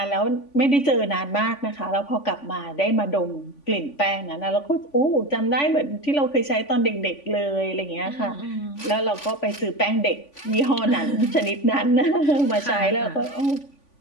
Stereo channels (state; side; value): late; right; 3.5 ms